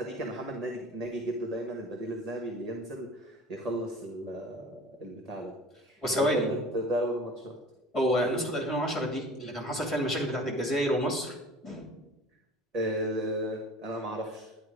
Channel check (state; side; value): normal; both; correlation 0.43